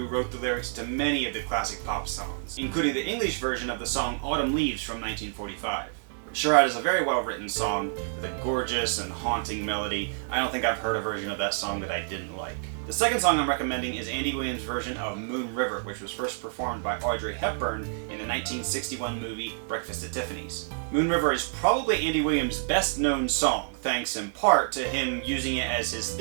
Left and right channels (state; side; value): silent; left; digital silence